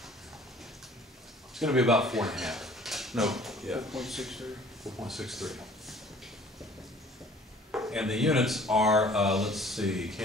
It's going to be about 4.5. No, yeah. 4.63. 4.63. And the units are, let's see,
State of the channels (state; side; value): normal; both; correlation 0.52